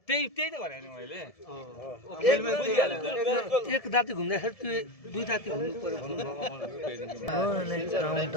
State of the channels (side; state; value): right; late; 1.7 ms